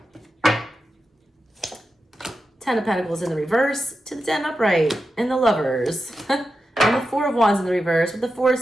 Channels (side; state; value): both; normal; correlation 0.90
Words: Ten of Pentacles in the reverse to the 10 upright and the Lovers. And the Four of Wands in the reverse with the Four of